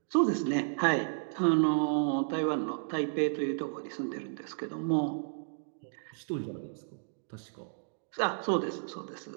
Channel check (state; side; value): silent; left; digital silence